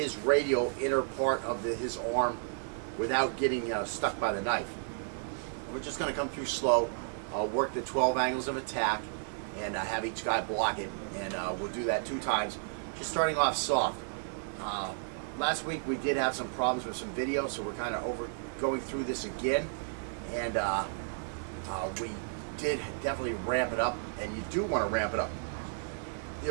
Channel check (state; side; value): silent; left; digital silence